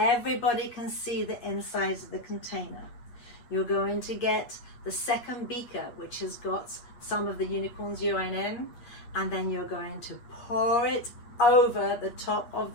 can see the insides of the container. You're going to get the second beaker, which has got some of the unicorn's urine in, and then you're going to pour it over the top of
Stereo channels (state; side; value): late; right; 8.4 ms